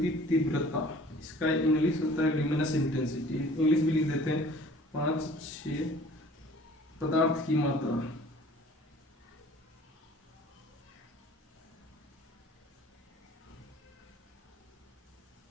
तीव्रता, इसका इंग्लिश होता है ल्यूमिनस इंटेंसिटी, इंग्लिश भी लिख देते हैं 5-6। पदार्थ की मात्रा,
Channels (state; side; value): normal; both; correlation 0.50